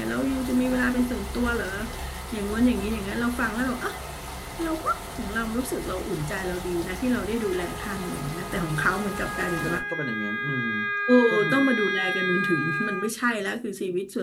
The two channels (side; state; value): both; identical; correlation 1.00